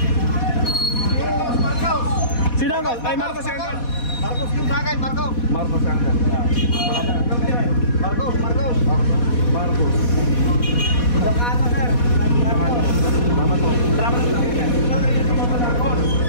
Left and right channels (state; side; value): late; right; 4.2 ms